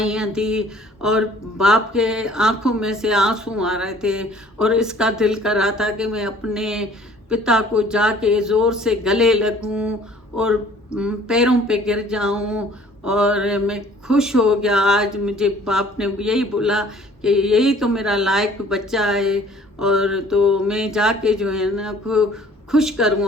दी। और बाप के आंखों में से आंसू आ रहे थे और इसका दिल कर रहा था कि मैं अपने पिता को जाके ज़ोर से गले लगूं और पैरों पे गिर जाऊं। और मैं खुश हो गया, आज मुझे बाप ने यही बोला कि यही तो मेरा लायक बच्चा है। और तो मैं जाके जो है ना खुश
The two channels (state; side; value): normal; both; correlation 0.54